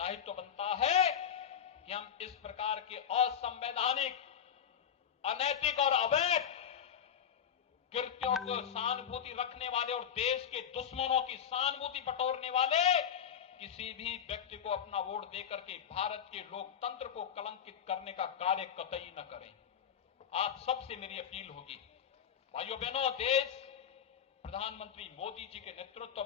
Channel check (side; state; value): right; quieter; 8.5 dB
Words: बनता है कि हम इस प्रकार के असंवैधानिक, अनैतिक और अवैध कृत्यों को सहानुभूति रखने वाले और देश के दुश्मनों की सहानुभूति बटोरने वाले किसी भी व्यक्ति को अपना वोट देकर के भारत के लोकतंत्र को कलंकित करने का कार्य कतई न करें। आप सबसे मेरी अपील होगी, भाइयों बहनों, देश प्रधानमंत्री मोदी जी के नेतृत्व